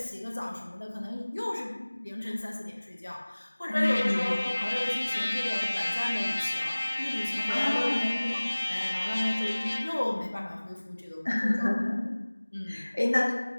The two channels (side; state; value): both; inverted; correlation -1.00